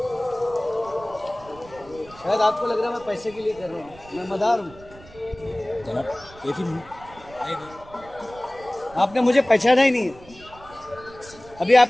शायद आपको लग रहा है मैं पैसे के लिए कर रहा हूँ, मैं मदार हूँ। आपने मुझे पहचाना ही नहीं है। अभी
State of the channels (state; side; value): noise; right; rumble, 21 dB below the sound